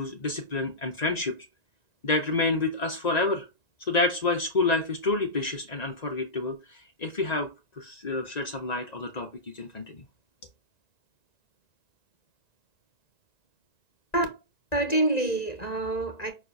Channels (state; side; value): late; right; 1.9 ms